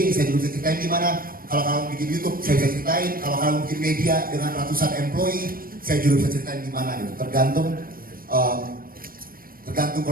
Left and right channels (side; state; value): left; late; 0.42 ms